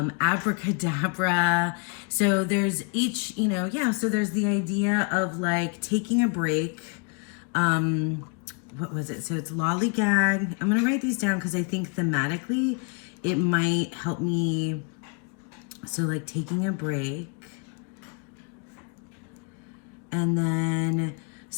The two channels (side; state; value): right; quieter; 37.1 dB